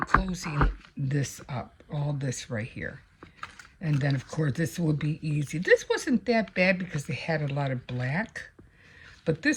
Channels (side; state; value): both; identical; correlation 1.00